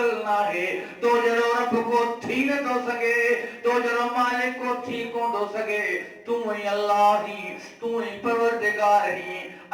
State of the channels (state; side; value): identical; both; correlation 1.00